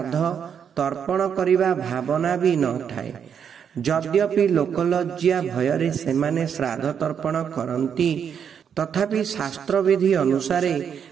तर्पण करिबा भावना भी न थाए। यद्यपि लोकलज्जा भयरे सेमाने श्राद्ध तर्पण करन्ति तथापि शास्त्र विधि अनुसारे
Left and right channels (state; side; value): quieter; left; 7.7 dB